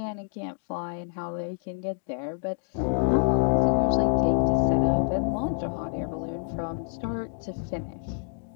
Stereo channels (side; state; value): right; silent; 60 dB below the other